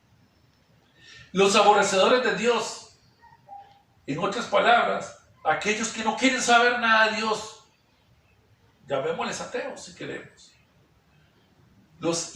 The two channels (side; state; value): both; identical; correlation 1.00